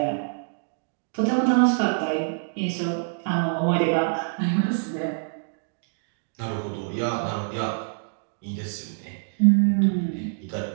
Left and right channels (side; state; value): left; silent; digital silence